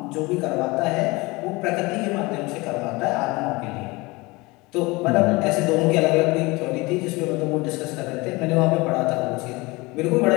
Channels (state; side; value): quieter; right; 23.6 dB